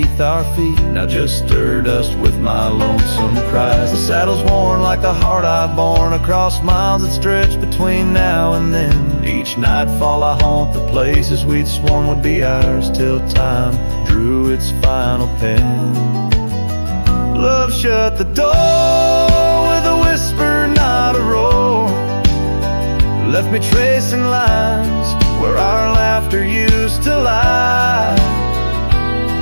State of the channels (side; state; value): both; inverted; correlation -1.00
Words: our feet, now just stir dust with my lonesome cries. The saddle's worn like the heart I've borne across miles that stretch between now and then. Each nightfall I haunt the places we'd sworn would be ours till time drew its final pen. Love shut the door with a whisper, not a roar. Left me tracing lines where our laughter used to lie.